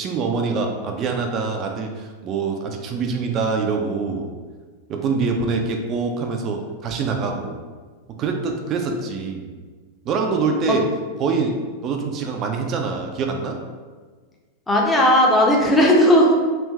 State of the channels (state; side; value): normal; both; correlation 0.22